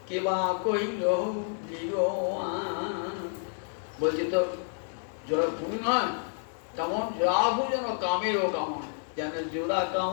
কেবা কইল বলছে তো জোড়া ভুরু নয়, তেমন জোড়া ভুরু যেন কামেরও কামান, যেন জোড়া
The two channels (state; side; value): silent; right; 58 dB below the other